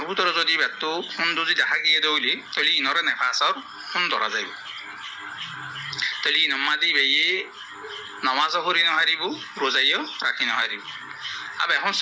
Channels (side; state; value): both; identical; correlation 1.00